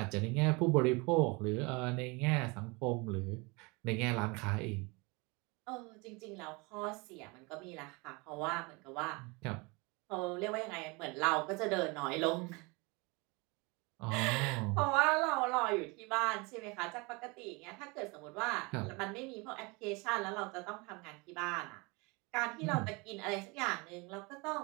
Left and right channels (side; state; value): left; quieter; 27.4 dB